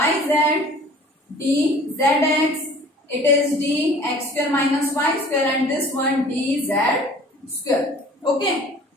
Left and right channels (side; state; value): both; normal; correlation 0.48